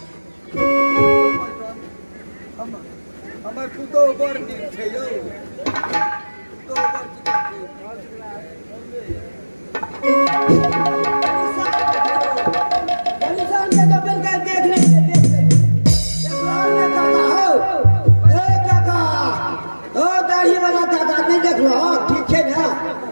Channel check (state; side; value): inverted; both; correlation -1.00